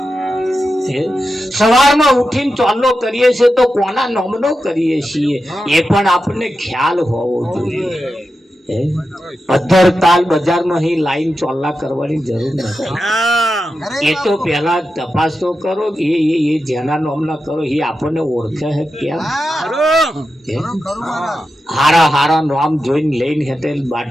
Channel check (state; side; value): normal; both; correlation 0.90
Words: સવારમાં ઉઠીને ચોલ્લો કરીએ છીએ તો કોના નામનો કરીએ છીએ એ પણ આપણને ખ્યાલ હોવો જોઈએ. અધર તાલ બજારમાં હી લાઈન ચોલ્લા કરવાની જરૂર નથી. એ તો પેલા તપાસ તો કરો કે એ જેના નામના કરો એ આપણને ઓળખે છે કેમ? હારા હારા નામ જોઈને લઈને હેતે